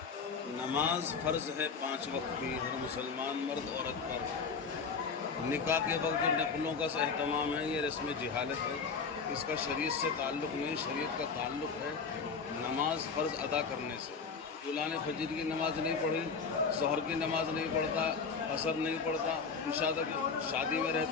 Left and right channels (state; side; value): quieter; right; 5.3 dB